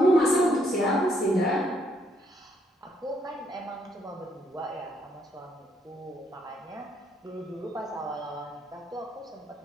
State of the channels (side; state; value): both; normal; correlation 0.72